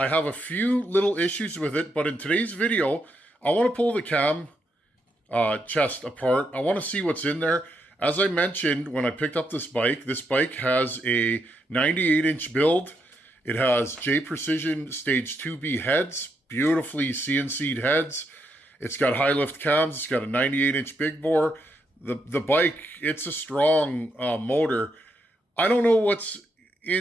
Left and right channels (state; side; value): normal; both; correlation 0.79